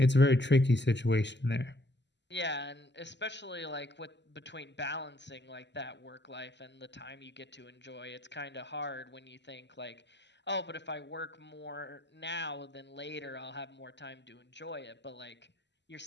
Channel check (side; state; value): right; late; 0.51 ms